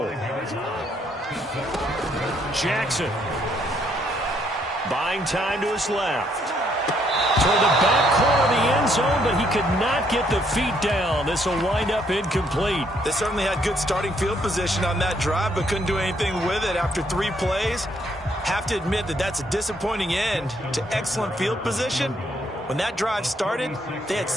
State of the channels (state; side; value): normal; both; correlation 0.70